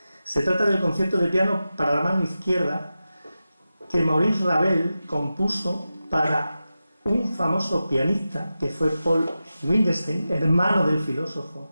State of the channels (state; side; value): inverted; both; correlation -0.93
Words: Se trata del concierto de piano para la mano izquierda que Maurice Ravel compuso para un famoso pianista que fue Paul Wittgenstein, hermano del